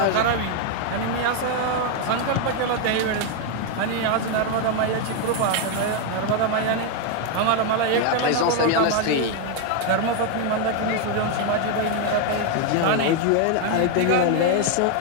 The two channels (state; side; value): different; both; correlation 0.01